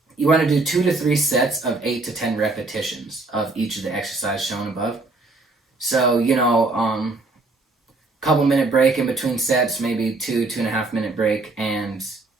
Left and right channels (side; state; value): left; quieter; 3.3 dB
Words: you want to do 2 to 3 sets of 8 to 10 repetitions of each of the exercises shown above. So, couple minute break in between sets, maybe 2.5 minute break, and